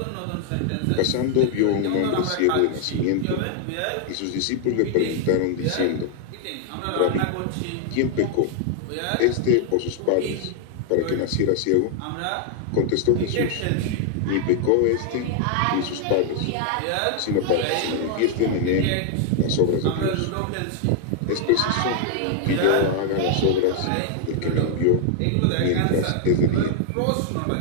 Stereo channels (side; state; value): both; different; correlation 0.00